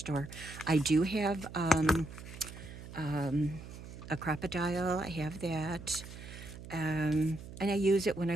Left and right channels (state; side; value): noise; right; hum, 13 dB below the sound